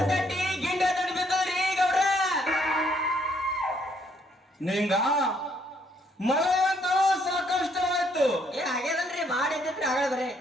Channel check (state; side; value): normal; both; correlation 0.69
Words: ತಟ್ಟಿ ಗಿಂಡ ತಟ್ಟಿ ಬಿದ್ದವ್ರಿ ಗೌರ. ನಿಂಗ ಮಳೆ ಅಂತೂ ಸಾಕಷ್ಟವಾಯ್ತು. ಹಾಗೇದಲ್ರಿ, ಮಾಡಿದ್ರಿ ಆಗ ಬರೇ